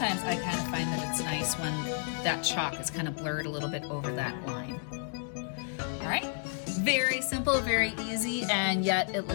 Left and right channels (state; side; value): silent; right; 57 dB below the other